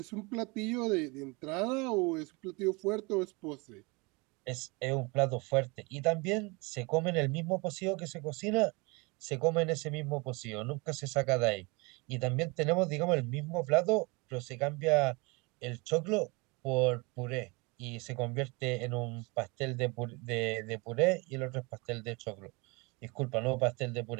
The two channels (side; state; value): left; quieter; 27.8 dB